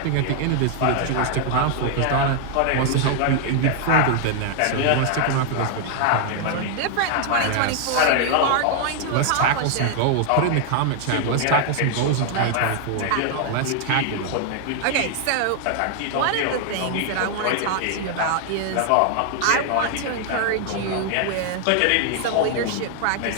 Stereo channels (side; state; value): both; different; correlation 0.00